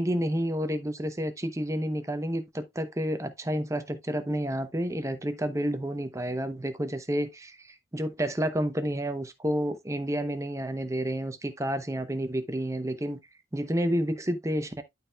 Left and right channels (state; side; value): normal; both; correlation 0.85